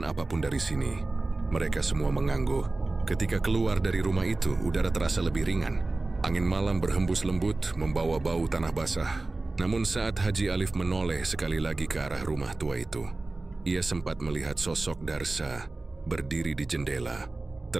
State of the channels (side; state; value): left; quieter; 3.2 dB